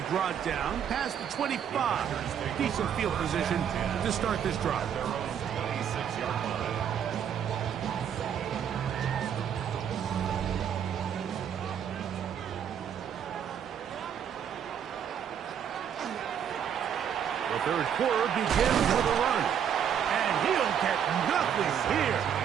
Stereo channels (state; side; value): quieter; left; 8.6 dB